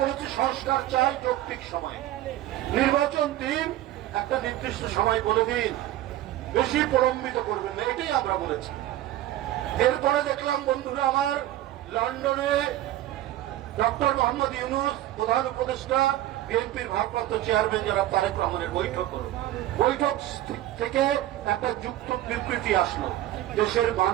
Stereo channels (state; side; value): quieter; left; 14.2 dB